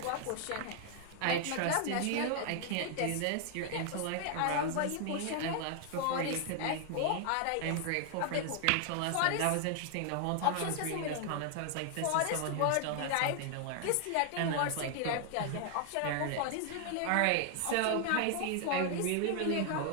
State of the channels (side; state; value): both; different; correlation 0.00